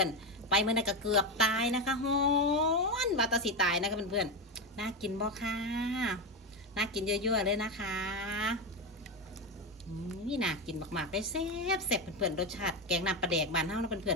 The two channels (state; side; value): normal; both; correlation 0.13